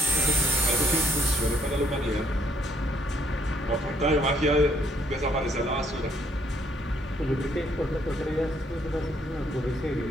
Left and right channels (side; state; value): both; normal; correlation 0.69